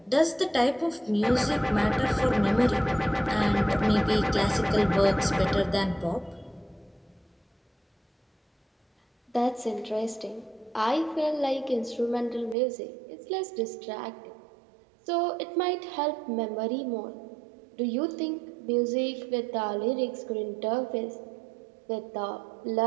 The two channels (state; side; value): drops out; left; at 12.6 s